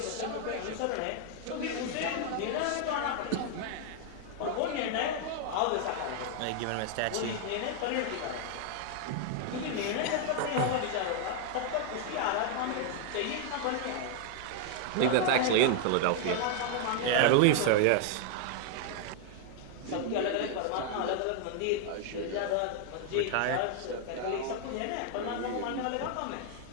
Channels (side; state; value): both; different; correlation 0.00